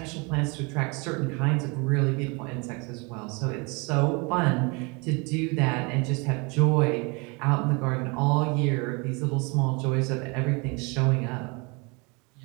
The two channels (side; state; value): left; quieter; 29.7 dB